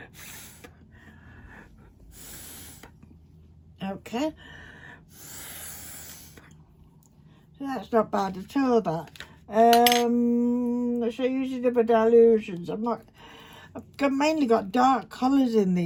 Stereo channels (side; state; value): both; identical; correlation 1.00